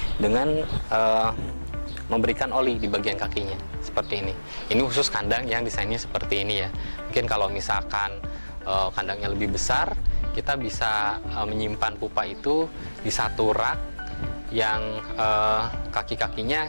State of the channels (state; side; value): inverted; both; correlation -1.00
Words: dengan memberikan oli di bagian kakinya seperti ini. Ini khusus kandang yang desainnya seperti ini ya. Mungkin kalau misalkan kandangnya lebih besar, kita bisa menyimpan pupa itu di satu rak yang